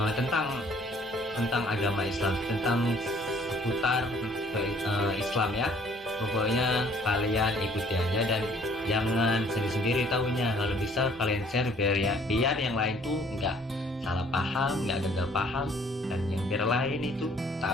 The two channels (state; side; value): normal; both; correlation 0.59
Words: tentang agama Islam, tentang seputar Islam ya. Pokoknya kalian ikuti aja dan jangan sendiri-sendiri tahunya. Kalau bisa kalian share biar yang lain tuh nggak salah paham, nggak gagal paham, dan yang biar lain itu